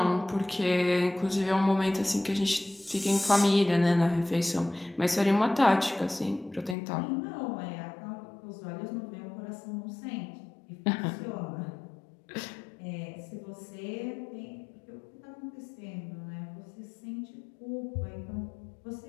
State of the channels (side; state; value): right; drops out; at 6.8 s